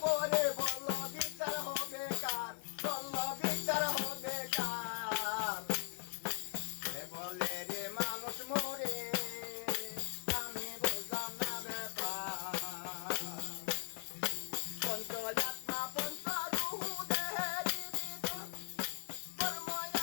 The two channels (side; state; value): right; silent; digital silence